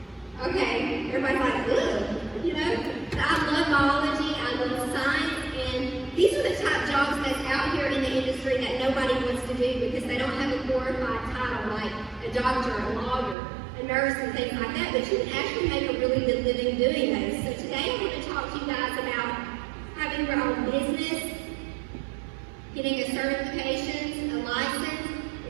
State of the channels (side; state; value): left; drops out; at 13.4 s